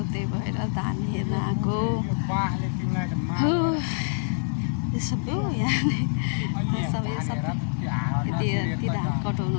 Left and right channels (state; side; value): silent; right; 61 dB below the other